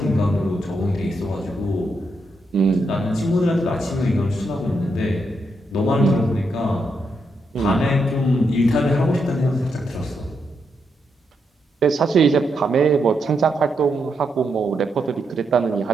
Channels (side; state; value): both; normal; correlation 0.81